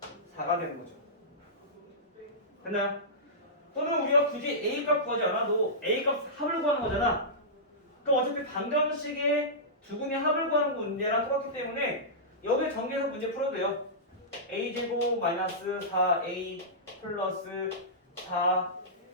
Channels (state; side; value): normal; both; correlation -0.16